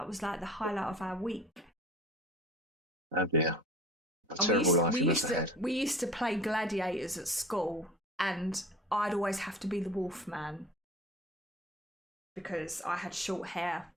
was like the highlight of our week. Oh dear. We used to play gladiators at school, and I'd always have to be the Wolfman because I had short hair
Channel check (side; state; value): both; normal; correlation 0.42